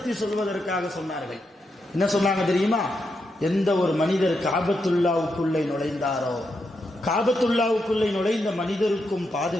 சொல்வதற்காக சொன்னார்கள். என்ன சொன்னாங்க தெரியுமா? எந்த ஒரு மனிதர் காபத்துல்லாவுக்குள்ளே நுழைந்தாரோ, காபத்துல்லாவுக்குள்ளே நுழைந்த மனிதருக்கும்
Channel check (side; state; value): both; normal; correlation 0.83